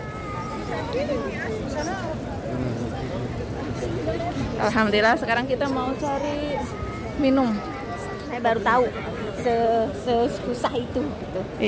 Alhamdulillah sekarang kita mau cari minum. Saya baru tahu sesusah itu gitu.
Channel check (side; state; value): both; identical; correlation 1.00